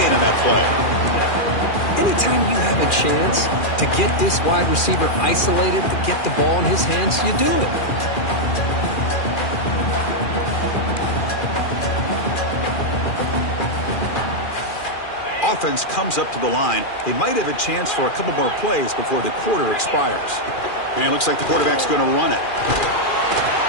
on that play. Anytime you have a chance to get this wide receiver isolated, to get the ball in his hands, you do it. Offense comes up to the line. They might have a chance for a couple more plays before the quarter expires. And it looks like the quarterback's going to run it.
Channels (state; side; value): late; right; 2.4 ms